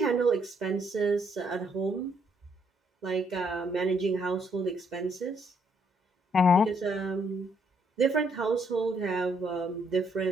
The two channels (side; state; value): both; normal; correlation 0.71